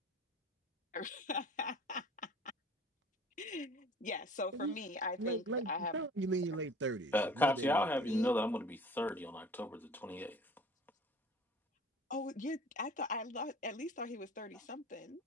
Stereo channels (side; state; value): both; normal; correlation 0.46